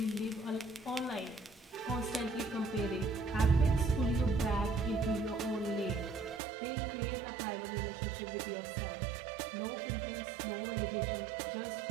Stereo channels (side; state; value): left; drops out; at 6.4 s